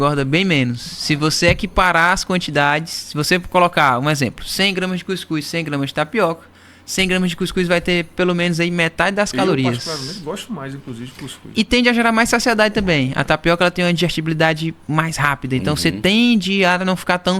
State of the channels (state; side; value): identical; both; correlation 1.00